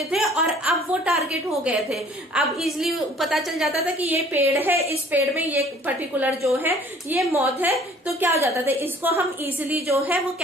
थे और अब वो टारगेट हो गए थे। अब इजीली पता चल जाता था कि ये पेड़ है, इस पेड़ में ये पर्टिकुलर जो है ये मॉथ है, तो क्या हो जाता था, इसको हम इजीली जो है वो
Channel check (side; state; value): both; normal; correlation 0.53